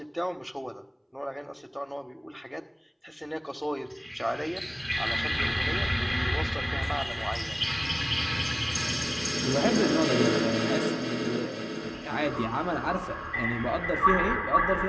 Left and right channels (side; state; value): both; identical; correlation 1.00